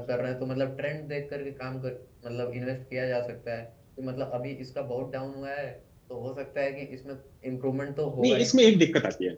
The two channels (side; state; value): both; identical; correlation 1.00